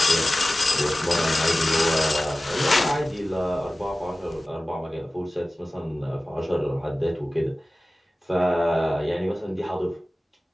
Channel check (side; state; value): both; normal; correlation 0.96